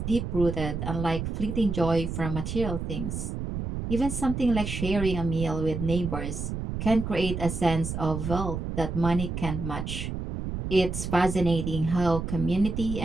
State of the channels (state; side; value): noise; right; rumble, 4 dB below the sound